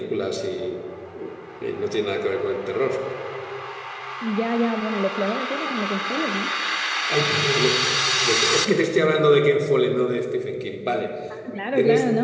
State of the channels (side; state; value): both; identical; correlation 1.00